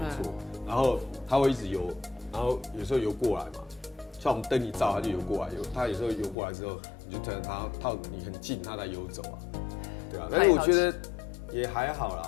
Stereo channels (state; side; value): drops out; right; at 6.4 s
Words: 错。然后它会一直游，然后有时候游过来嘛，像我们灯一照，它就游过来。它有时候游过来之后，你就等它靠你很近，它才游走啊。对啊，但是我觉得也还好